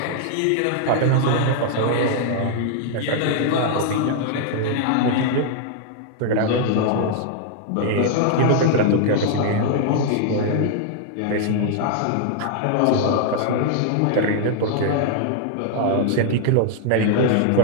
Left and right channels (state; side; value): different; both; correlation -0.01